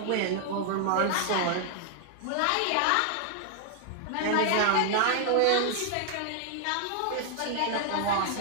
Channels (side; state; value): both; different; correlation 0.00